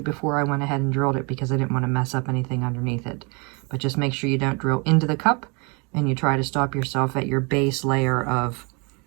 before I went ahead and drilled it, because I didn't want to mess up anything underneath it. But just make sure you don't drill into the cup, and you try to stop yourself at your base layer of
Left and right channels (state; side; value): quieter; left; 31.7 dB